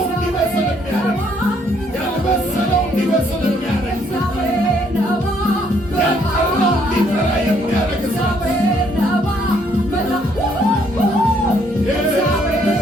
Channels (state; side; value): normal; both; correlation 0.68